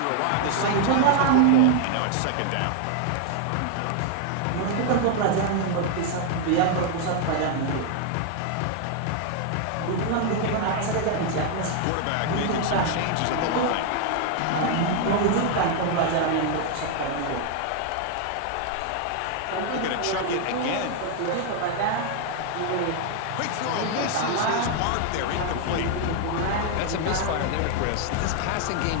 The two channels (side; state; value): both; different; correlation 0.00